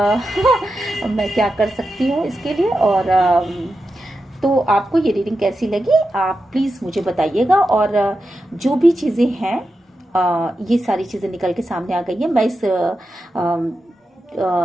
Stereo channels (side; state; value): both; normal; correlation 0.89